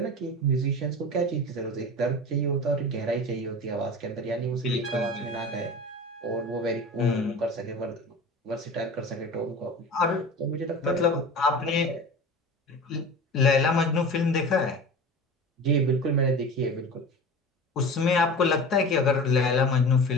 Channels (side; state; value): both; normal; correlation 0.34